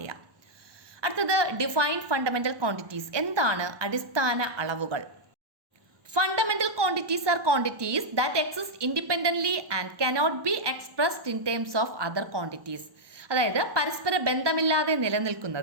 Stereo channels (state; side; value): late; left; 1.1 ms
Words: അടുത്തത് ഡിഫൈൻ ഫണ്ടമെന്റൽ ക്വാണ്ടിറ്റീസ്. എന്താണ് അടിസ്ഥാന അളവുകൾ? Fundamental quantities R quantities that exist independently and cannot be expressed in terms of other quantities. അതായത് പരസ്പര ബന്ധമില്ലാതെ